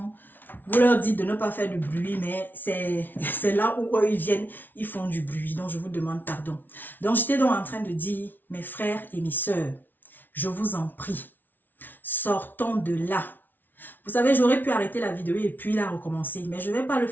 vous leur dites de ne pas faire de bruit, mais c'est là où eux, ils viennent, ils font du bruit. Donc, je vous demande pardon. Donc, j'étais donc en train de dire, mes frères et mes sœurs, je vous en prie, sortons de là. Vous savez, j'aurais pu arrêter la vidéo et puis la recommencer, mais je ne vais pas le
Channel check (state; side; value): late; right; 0.089 ms